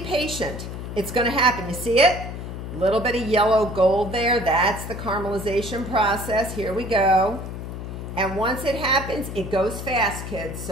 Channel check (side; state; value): left; noise; hum, 8 dB below the sound